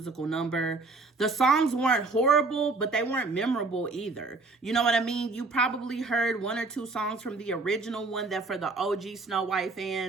number. The songs weren't horrible, but they weren't memorable either. You know what I mean? You probably heard one or two songs from the original one that for the OG SnowWhite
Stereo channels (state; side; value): quieter; left; 3.7 dB